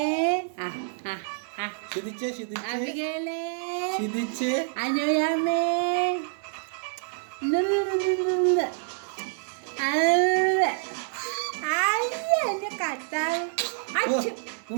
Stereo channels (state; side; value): silent; left; 60 dB below the other